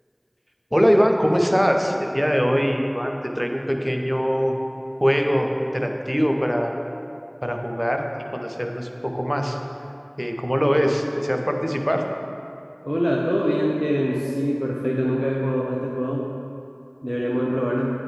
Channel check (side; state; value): both; identical; correlation 1.00